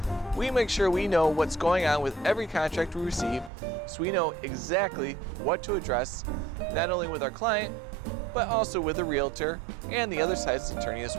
We make sure we know what's going on with every contract we receive, so we know exactly what to address, not only with our client, but also with the realtor and the other side's attorney as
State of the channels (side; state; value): left; drops out; at 3.5 s